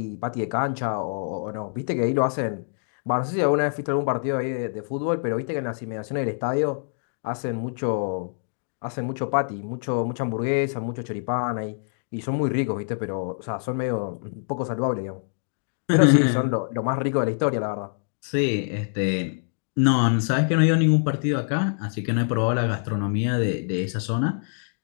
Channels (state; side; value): silent; right; digital silence